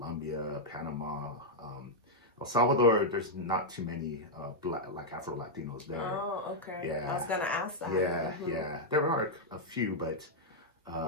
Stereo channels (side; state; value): both; normal; correlation -0.03